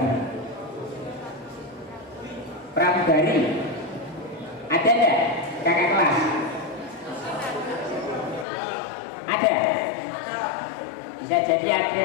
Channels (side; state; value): right; drops out; at 8.5 s